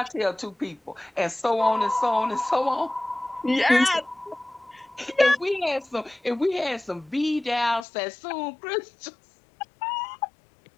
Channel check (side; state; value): right; drops out; at 7.9 s